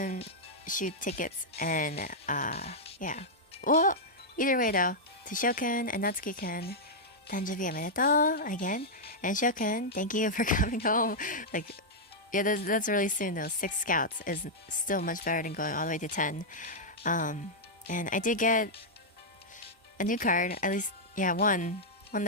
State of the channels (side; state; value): both; normal; correlation -0.06